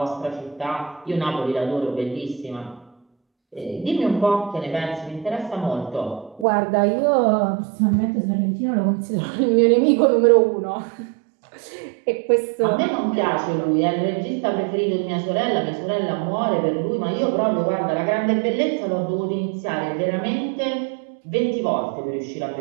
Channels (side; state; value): left; drops out; at 6.5 s